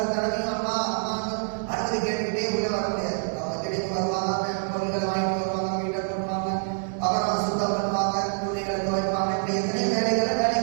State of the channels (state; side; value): silent; left; digital silence